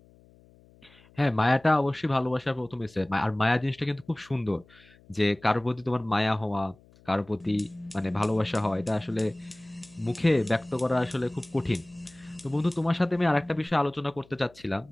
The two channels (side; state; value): left; noise; hum, 27 dB below the sound